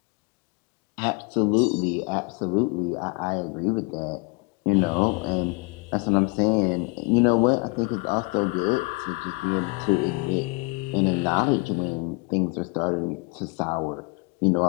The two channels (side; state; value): right; quieter; 29.0 dB